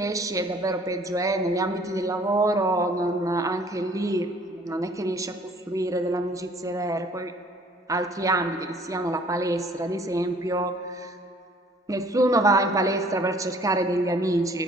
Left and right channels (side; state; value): both; normal; correlation 0.56